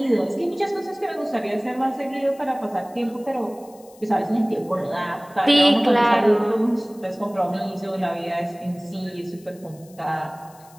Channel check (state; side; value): noise; left; hiss, 26 dB below the sound